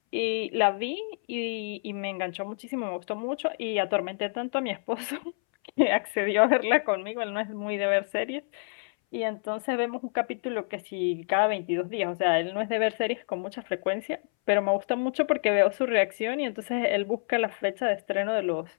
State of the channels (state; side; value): silent; right; 59 dB below the other